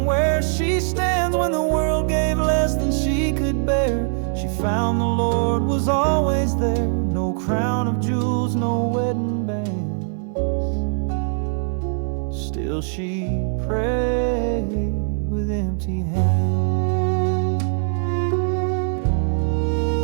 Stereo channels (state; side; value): silent; left; digital silence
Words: where she stands. When the world gave less than she could bear, she found the Lord was always there. No crown of jewels, no wedding bands, still she prayed with empty hands.